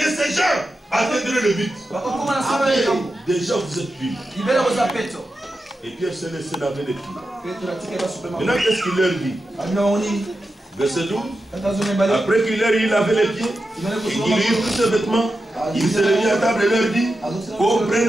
ces gens atteindraient le but. Déjà vous êtes purs. Et Pierre s'est laissé laver les pieds. Maintenant, qu'est-ce qu'il leur dit? Verset 12. Après qu'il leur ait lavé les pieds, il lui eut pris ses vêtements, il s'est mis à table et leur dit:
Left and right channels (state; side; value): normal; both; correlation 0.90